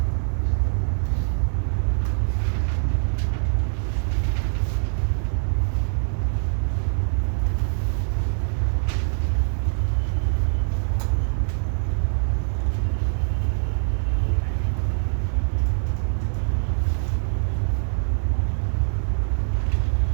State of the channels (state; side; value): silent; left; 56 dB below the other